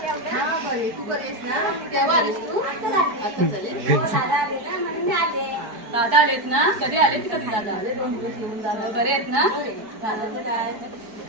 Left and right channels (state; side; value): late; left; 4.6 ms